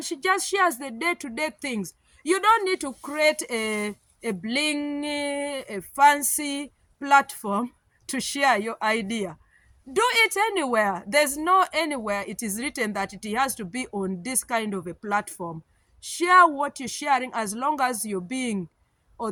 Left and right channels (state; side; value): identical; both; correlation 1.00